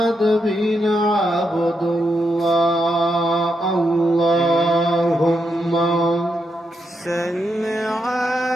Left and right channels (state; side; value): normal; both; correlation 0.82